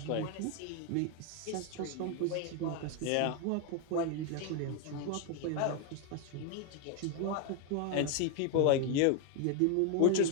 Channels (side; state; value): both; different; correlation 0.01